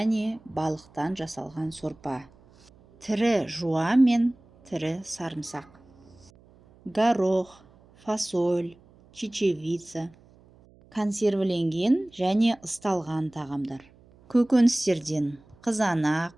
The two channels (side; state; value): right; noise; hum, 28 dB below the sound